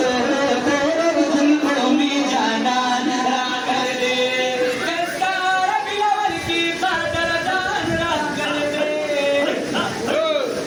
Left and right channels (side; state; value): both; identical; correlation 1.00